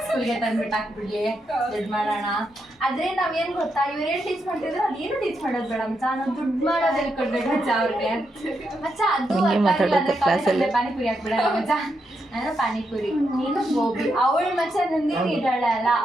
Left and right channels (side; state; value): both; normal; correlation 0.82